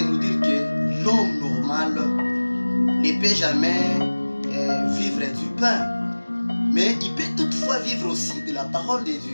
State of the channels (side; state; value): both; inverted; correlation -1.00